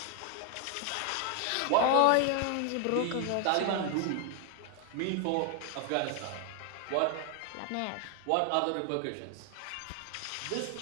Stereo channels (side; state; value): both; different; correlation 0.01